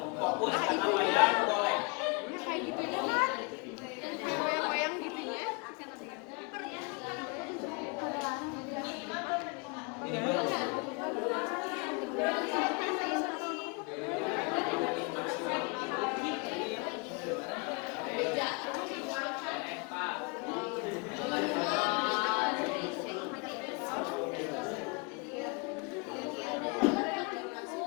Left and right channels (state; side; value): quieter; right; 31.4 dB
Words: fokus karena wayang golek. Kayak gitu ya kan? Kayak wayang-wayang gitu ya. Ini baru.